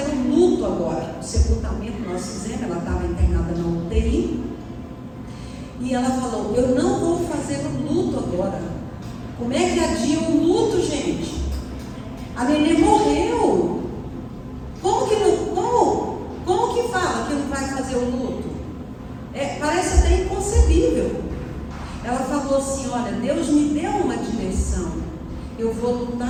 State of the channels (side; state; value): both; identical; correlation 1.00